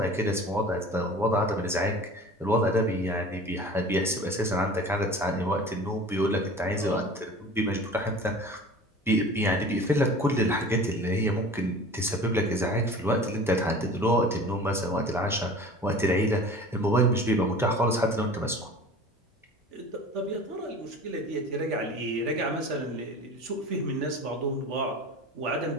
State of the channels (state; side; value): normal; both; correlation 0.40